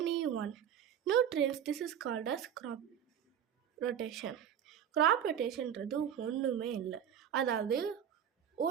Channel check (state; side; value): quieter; left; 9.3 dB